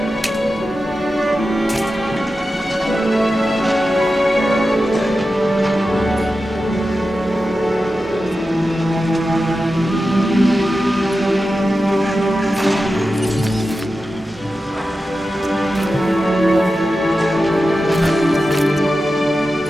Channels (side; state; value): both; normal; correlation 0.92